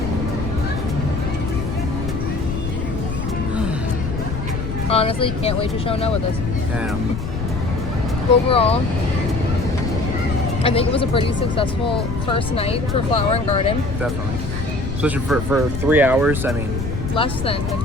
Honestly, can't wait to show Noah this. Yeah. Overall, I think it was a pretty successful first night for Flower and Garden. Definitely. Especially for 3 hours. I mean, Less than like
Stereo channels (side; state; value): left; noise; rumble, 5 dB below the sound